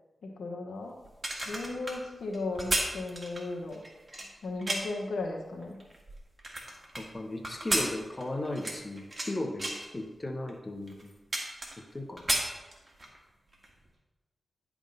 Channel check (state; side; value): normal; both; correlation 0.91